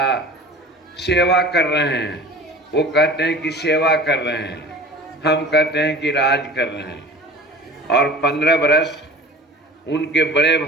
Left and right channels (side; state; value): both; normal; correlation 0.40